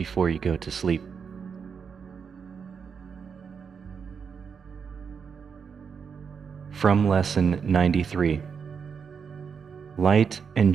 you go to sleep. From Lesson 93. Light and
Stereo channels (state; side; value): quieter; left; 6.3 dB